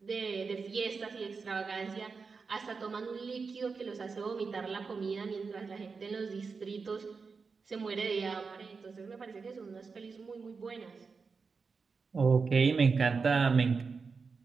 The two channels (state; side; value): quieter; left; 4.9 dB